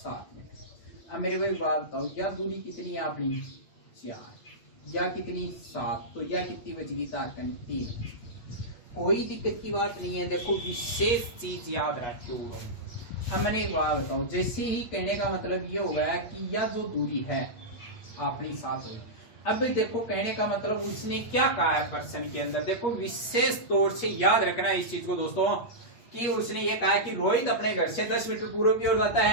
मीटर। अब मेरे को एक बात बताओ, या दूरी कितनी है अपनी, 4, या कितनी, 7, तो या कितनी बच गई, तारकन 3। कोई दिक्कत की बात नहीं है। देखो विशेष चीज याद रखो। अब मैंने एक बात बताओ, जैसे ही कहने का मतलब ये हो गया कि यह जो दूरी है अपनी 7 हुई। अब देखो कहने का मतलब उसने क्या कहा है प्रश्न के अंदर, देखो विशेष तौर से याद रखना इस चीज को दोस्तों, कि उसने ये कहा कि रोहित अपने घर से 10 मीटर पूर्व की ओर जाता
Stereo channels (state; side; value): late; right; 8.3 ms